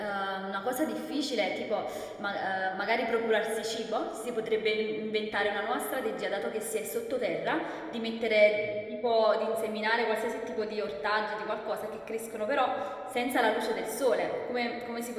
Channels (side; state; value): both; identical; correlation 1.00